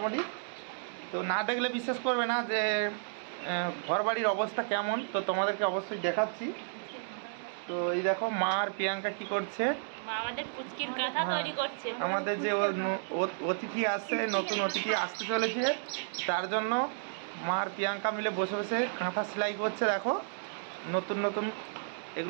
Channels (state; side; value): silent; left; digital silence